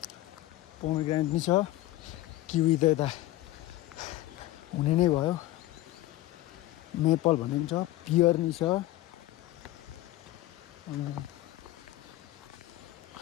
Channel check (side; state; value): right; quieter; 16.1 dB